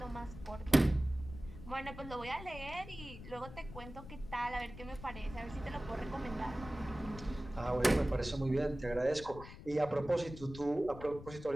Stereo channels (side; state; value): left; noise; rumble, 13 dB below the sound